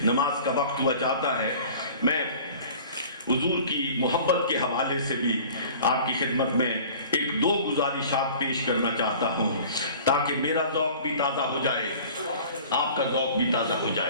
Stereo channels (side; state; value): both; inverted; correlation -0.45